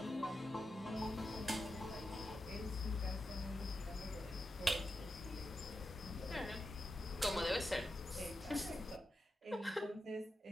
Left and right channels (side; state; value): both; normal; correlation 0.89